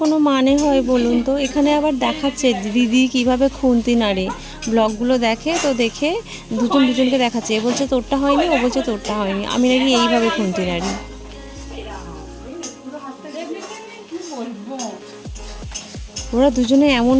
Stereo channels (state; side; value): identical; both; correlation 1.00